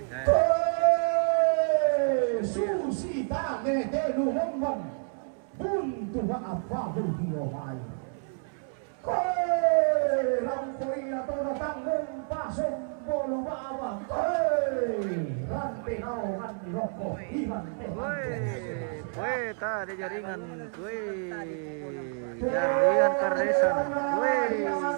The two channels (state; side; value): silent; left; 58 dB below the other